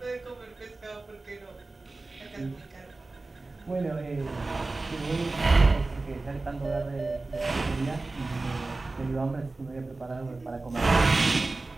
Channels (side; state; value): left; quieter; 3.3 dB